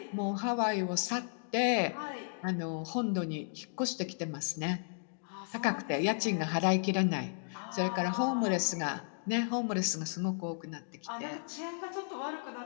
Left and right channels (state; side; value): silent; right; digital silence